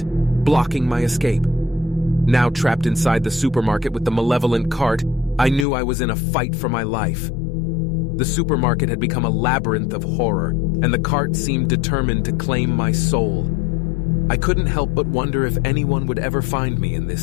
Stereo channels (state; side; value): drops out; right; at 5.7 s